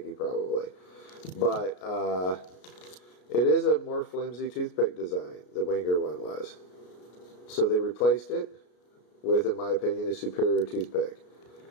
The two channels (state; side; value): late; right; 33 ms